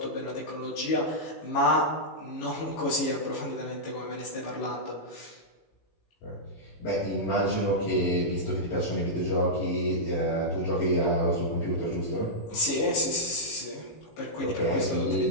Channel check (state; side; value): late; right; 18 ms